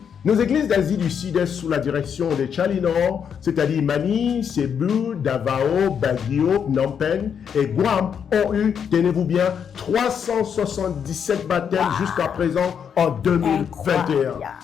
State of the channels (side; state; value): right; quieter; 7.6 dB